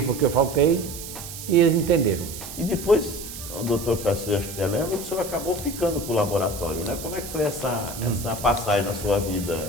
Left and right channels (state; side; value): noise; right; hiss, 11 dB below the sound